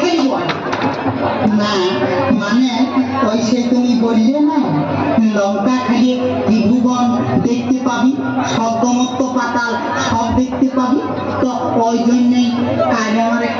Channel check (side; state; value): both; identical; correlation 1.00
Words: দিব না মানে ওই সে তুমি বললে না লঙ্কা খাইয়ে ত্রিভুবন দেখতে পাবি স্বর্গমত্ত পাতাল সব দেখতে পাবি তো ওই জন্যই আজ আমার